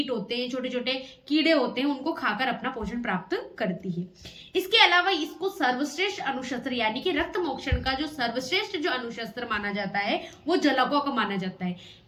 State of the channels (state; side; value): identical; both; correlation 1.00